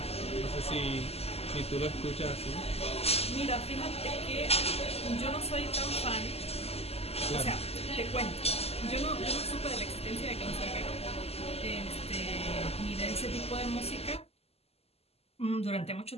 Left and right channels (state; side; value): late; right; 0.29 ms